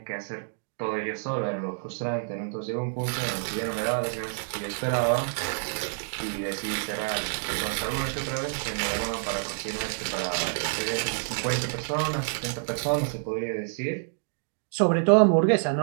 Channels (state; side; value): silent; left; digital silence